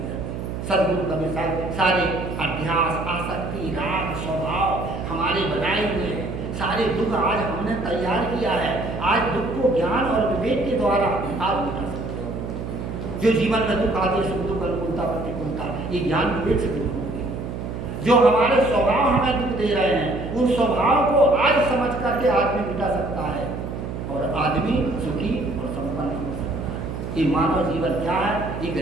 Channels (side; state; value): right; noise; hum, 6 dB below the sound